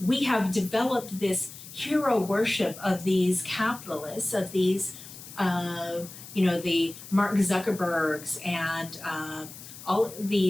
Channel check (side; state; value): left; noise; hiss, 15 dB below the sound